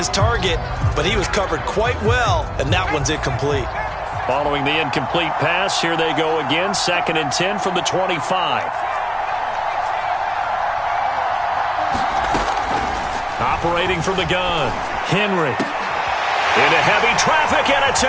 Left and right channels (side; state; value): both; identical; correlation 1.00